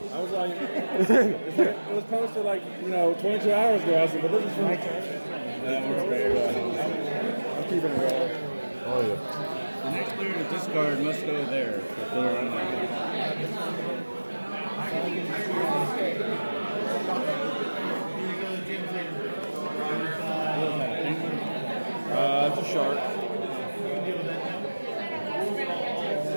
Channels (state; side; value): inverted; both; correlation -1.00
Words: I was like, it was posted like 22 hours ago. I said, but this is from my church. I'm keeping it real. Oh yeah. The next player to discard must go there. It's a shark.